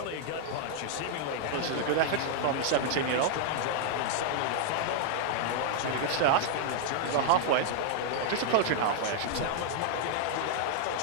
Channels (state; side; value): different; both; correlation -0.01